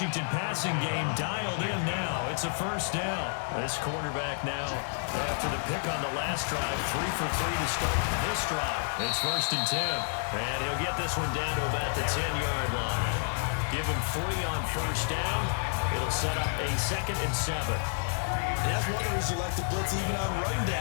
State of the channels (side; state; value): right; silent; digital silence